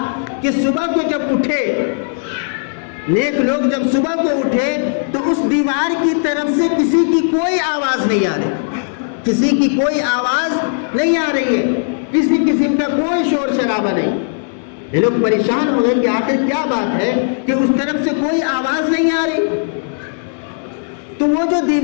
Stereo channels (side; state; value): right; silent; digital silence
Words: کہ صبح کو جب اٹھے، نیک لوگ جب صبح کو اٹھے تو اس دیوار کی طرف سے کسی کی کوئی آواز نہیں آ رہی، کسی کی کوئی آواز نہیں آ رہی ہے، کسی قسم کا کوئی شور شرابہ نہیں۔ یہ لوگ پریشان ہو گئے کہ آخر کیا بات ہے کہ اس طرف سے کوئی آواز نہیں آ رہی۔ تو وہ جو